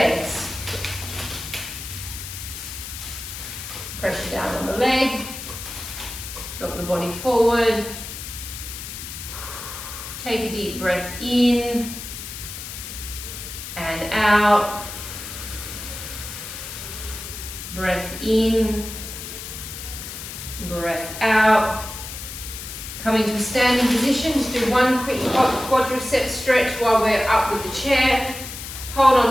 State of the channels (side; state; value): left; noise; hiss, 9 dB below the sound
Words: Pressure down on the leg. Drop the body forward. Take a deep breath in and out. Breath in, breath out. Coming to a standing position, just do one quick quadricep stretch while we're up with the chair. Hold